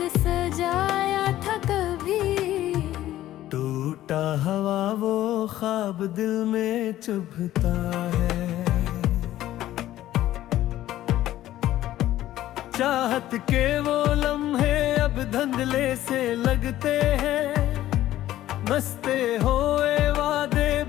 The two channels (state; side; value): quieter; right; 13.9 dB